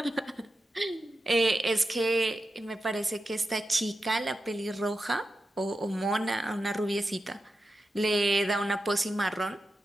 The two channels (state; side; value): normal; both; correlation 0.90